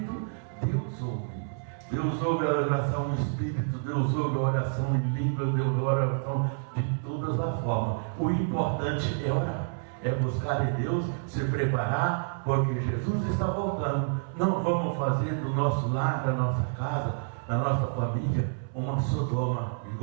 Deus ouve. Deus ouve a oração em espírito, Deus ouve a oração em língua, Deus ouve a oração de todas as formas. O importante é orar, é buscar em Deus, se preparar, porque Jesus está voltando. Não vamos fazer do nosso lar, da nossa casa, da nossa família, uma Sodoma e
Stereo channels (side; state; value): left; silent; 59 dB below the other